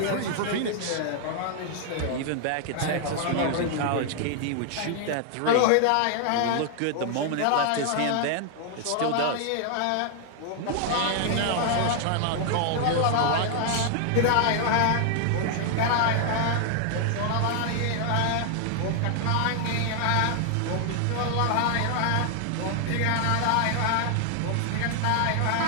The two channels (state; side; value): different; both; correlation 0.00